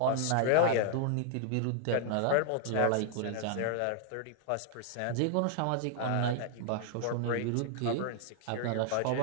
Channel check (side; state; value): both; different; correlation 0.00